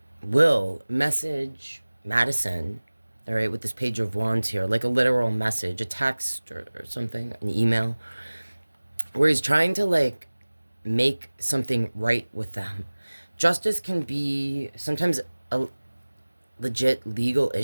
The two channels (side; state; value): both; inverted; correlation -1.00